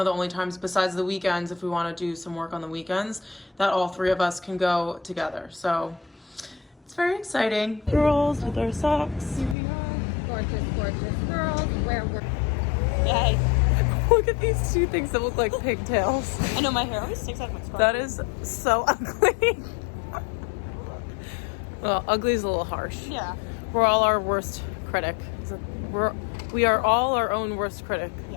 the only times besides the weekends, if we want to do some work on the weekends, that all three of us can go together. So it's very exciting. Girls with our socks. Here we are, gorgeous girls, where we're... Yay. Look at these two things that look like pigtails. I know my hair always sticks out of my scarf. That is so ugly. Well, ugly is a little harsh. Yeah. We're all our worst critic. We are all our own worst critic.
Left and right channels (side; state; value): right; drops out; at 9.6 s